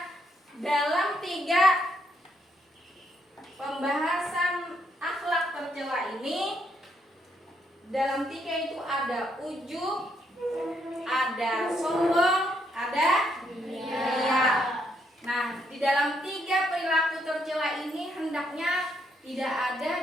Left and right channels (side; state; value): both; normal; correlation 0.75